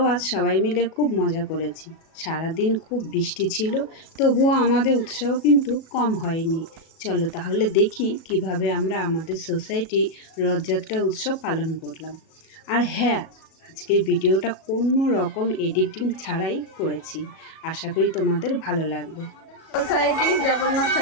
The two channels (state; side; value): late; right; 37 ms